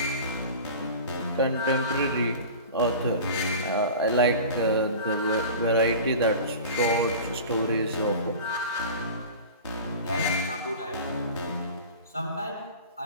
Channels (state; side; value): inverted; both; correlation -0.36